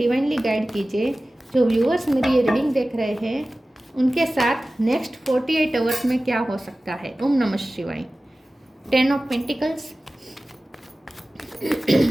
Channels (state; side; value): normal; both; correlation 0.96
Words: गाइड कीजिए। जो व्यूअर्स मेरी ये रीडिंग देख रहे हैं उनके साथ नेक्स्ट 48 आवर्स में क्या हो सकता है। ओम नमः शिवाय। 10 ऑफ पेंटिकल्स।